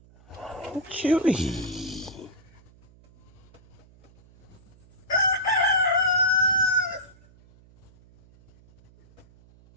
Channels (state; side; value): noise; right; hum, 26 dB below the sound